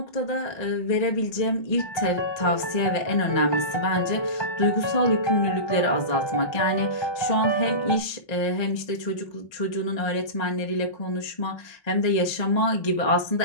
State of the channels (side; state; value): right; late; 1.3 ms